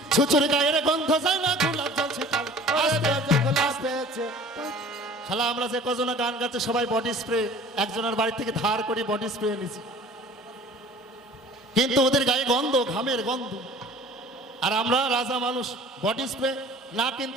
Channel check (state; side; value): normal; both; correlation 0.46